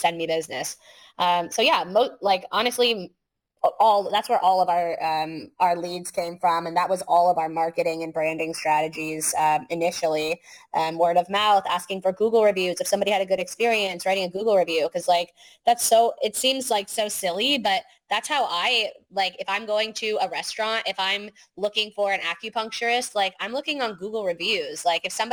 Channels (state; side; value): identical; both; correlation 1.00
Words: me business. Like honestly, all that's where all of our leads came from, and that was all of our marketing and branding strategies initially. Word of mouth, asking for Google reviews. If somebody had a good experience, writing a Google review, because like it seems like so silly, but that's how I like. If I'm going to a restaurant, if I'm looking for an acupuncturist, like I'm looking on Google reviews. Like if